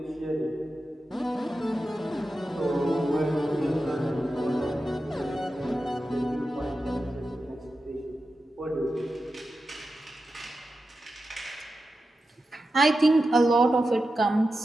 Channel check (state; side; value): normal; both; correlation 0.91